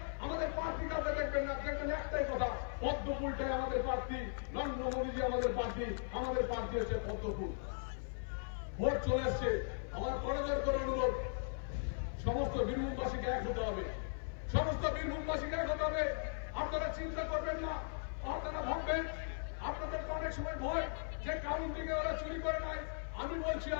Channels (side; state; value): right; silent; 52 dB below the other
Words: আমাদের প্রার্থী কাছে দেখবেন না, দেখবেন একটাই কথা, পদ্মফুলটাই আমাদের প্রার্থী, নরেন্দ্র মোদীজি আমাদের প্রার্থী, আমাদের প্রার্থী হচ্ছে পদ্মফুল। ভোট চলে এসছে, আমার করজোর করে অনুরোধ, সমস্ত বীরভূমবাসীকে এক হতে হবে, সমস্ত বীরভূমবাসীকে এক হতে হবে। আপনারা চিন্তা করবেন না, আপনারা ভাববেন আপনাদের অনেক সময় ভয় যে কাউন্টিংয়ে ওরা চুরি করে নাই। আমি বলছি